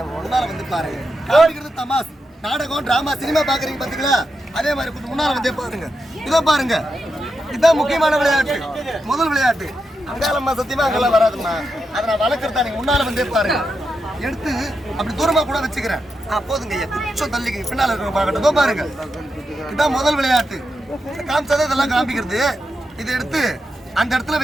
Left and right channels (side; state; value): both; normal; correlation 0.86